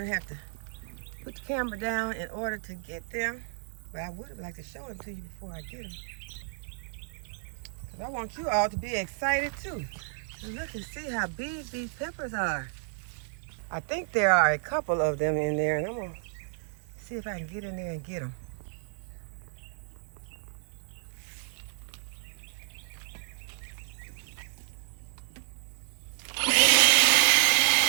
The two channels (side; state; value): left; silent; 57 dB below the other